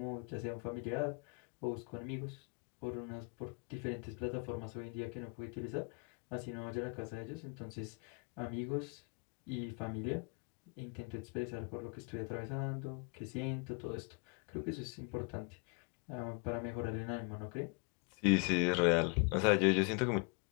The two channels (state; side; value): quieter; right; 34.0 dB